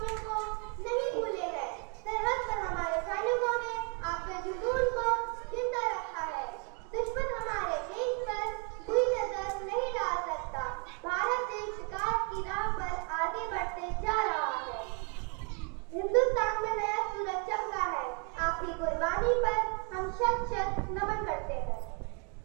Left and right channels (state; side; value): quieter; left; 37.2 dB